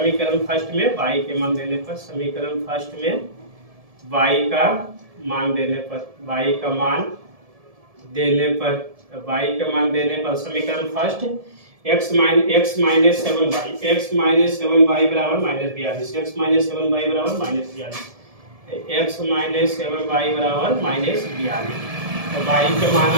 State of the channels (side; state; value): left; late; 1.7 ms